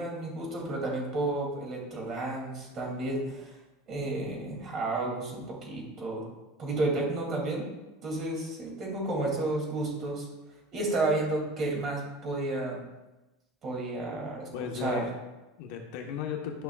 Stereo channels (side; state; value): both; normal; correlation 0.39